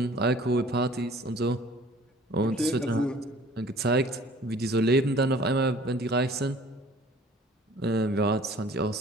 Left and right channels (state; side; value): normal; both; correlation 0.50